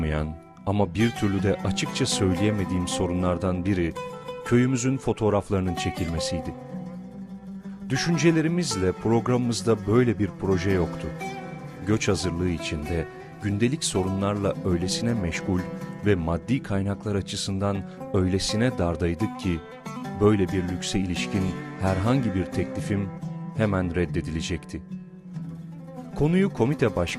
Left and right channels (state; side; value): identical; both; correlation 1.00